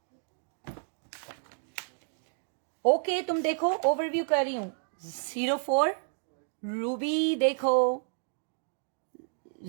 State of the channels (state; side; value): silent; left; digital silence